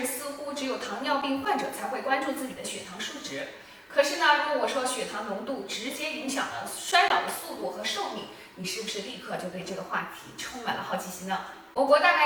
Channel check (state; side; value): identical; both; correlation 1.00